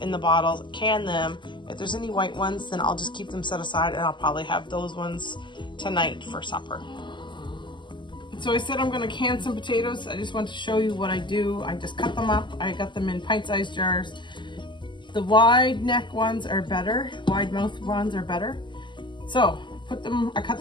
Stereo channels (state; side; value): late; right; 0.23 ms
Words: the bottles, can them. If there's any white ones, then I'll just keep them set aside, and I'll probably have those ones tonight for supper. So I said I'm gonna can some potatoes. I just want to show you what I do. I just cut them up. I got them in pint-sized jars. The wide neck ones are better. Wide mouth ones are better. So I cut